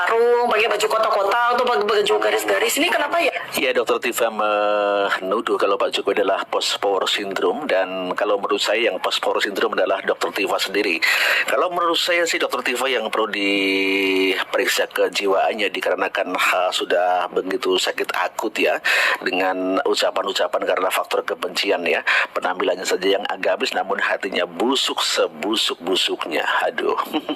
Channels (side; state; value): both; identical; correlation 1.00